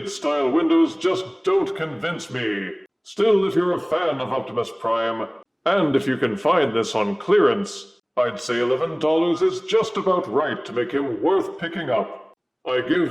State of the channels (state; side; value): identical; both; correlation 1.00